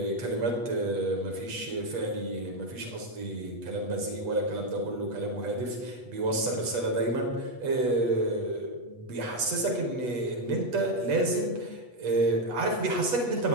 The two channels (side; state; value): left; late; 8.3 ms